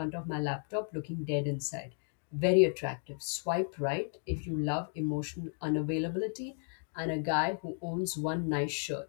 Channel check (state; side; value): silent; right; 55 dB below the other